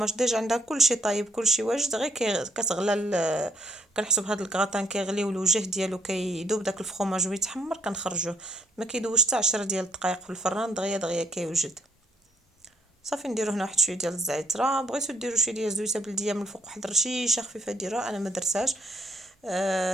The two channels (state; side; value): normal; both; correlation 0.68